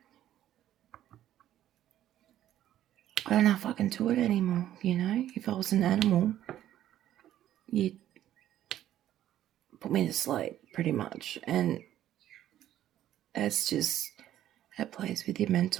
I don't know if I can do it anymore, If I was an animal, you'd put me to sleep, pretty much. And it's just, it plays with your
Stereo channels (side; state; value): left; quieter; 12.3 dB